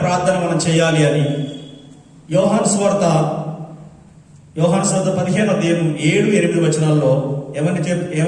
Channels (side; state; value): both; identical; correlation 1.00